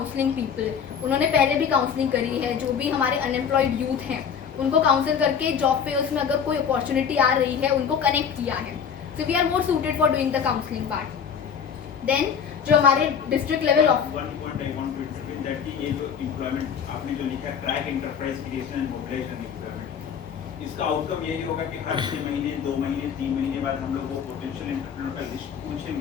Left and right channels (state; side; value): quieter; right; 7.2 dB